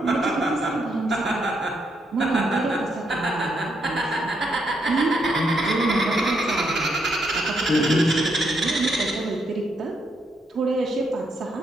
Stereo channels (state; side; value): normal; both; correlation 0.77